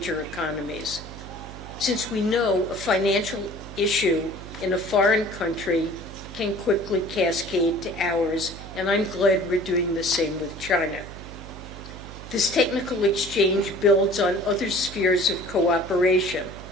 economies. Since we know a financial issue in a foreign country can quickly cascade to ours, and I'm glad we're doing the same with China. This technical exchange builds on other spheres of cooperation.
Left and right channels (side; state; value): right; noise; hum, 14 dB below the sound